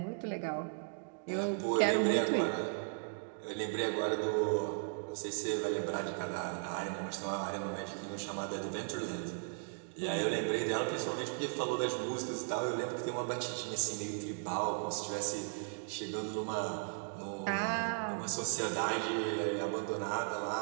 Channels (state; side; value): silent; left; digital silence